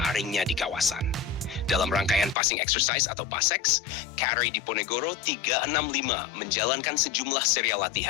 di kawasan. Dalam rangkaian passing exercise atau PASEX, Kri Diponegoro 365 menjalankan sejumlah serial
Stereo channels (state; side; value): drops out; right; at 2.4 s